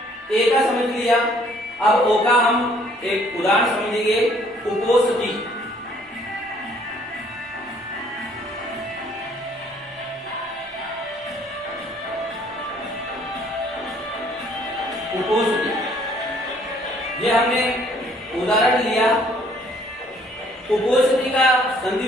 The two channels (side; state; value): both; normal; correlation 0.61